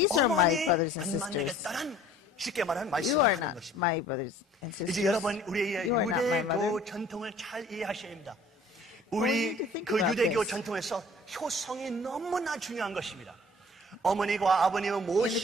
are my 어머니 brothers and 안 sisters. 만나겠다는 쉽게 말하는 You 말씀을 are 하는 not 것입니다. my brothers and sisters. 이제 여러분 우리의 You are not my mother. 유대교 전통을 잘 이해하셔야 합니다. we 우리 need to think 그 about 유대교 this. 전통에서 효성이 너무나 중요한 것입니다. 어머니와 아버님을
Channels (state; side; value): normal; both; correlation 0.51